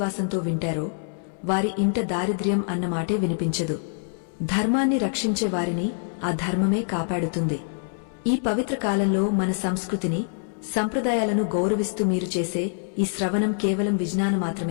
వింటారో వారి ఇంట దారిద్ర్యం అన్నమాటే వినిపించదు. ధర్మాన్ని రక్షించే వారిని ఆ ధర్మమే కాపాడుతుంది. ఈ పవిత్ర కాలంలో మన సంస్కృతిని, సంప్రదాయాలను గౌరవిస్తూ మీరు చేసే ఈ శ్రవణం కేవలం విజ్ఞానం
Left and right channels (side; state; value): right; silent; 62 dB below the other